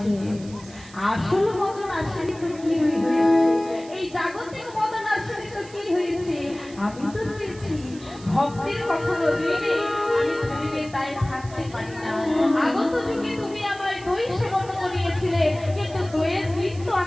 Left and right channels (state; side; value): noise; right; hiss, 21 dB below the sound